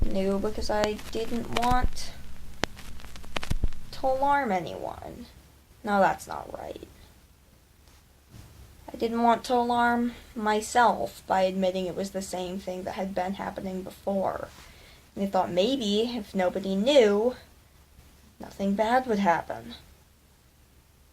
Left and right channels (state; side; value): identical; both; correlation 1.00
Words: new because I didn't want to alarm anyone. No, that's not right. I didn't want to alarm myself by admitting it was the same thing that had been happening before. And I thought maybe if nobody knew, nothing bad would happen.